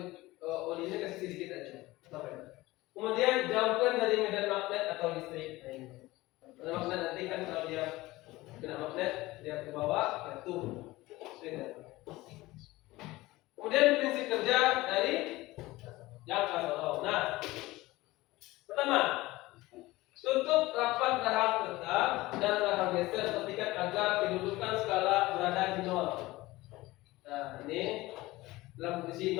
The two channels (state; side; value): quieter; right; 19.2 dB